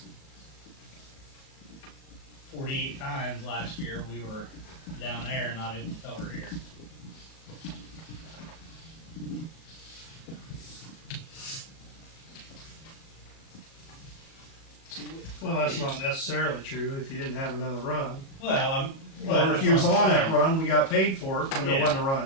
48 times last year, we were down there and not able to cover here. Well, that's not necessarily true if you didn't have another run. Well, Or if you was on that run, we got paid for it, and there Yeah. wasn't a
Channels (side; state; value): right; late; 37 ms